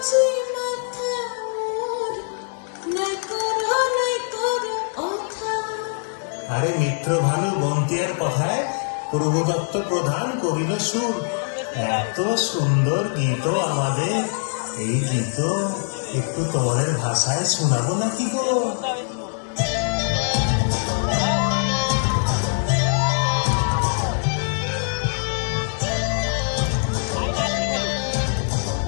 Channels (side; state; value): right; silent; digital silence